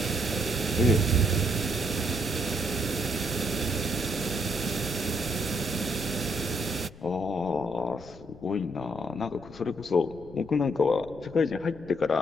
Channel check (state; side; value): noise; left; rumble, 19 dB below the sound